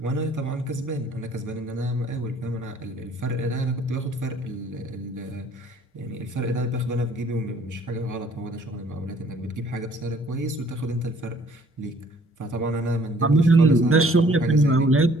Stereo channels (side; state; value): both; normal; correlation 0.58